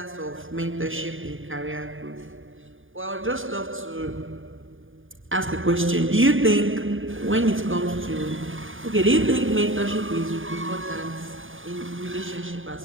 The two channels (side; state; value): left; late; 0.58 ms